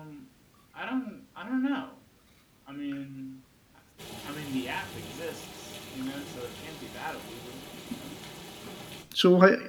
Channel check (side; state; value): both; identical; correlation 1.00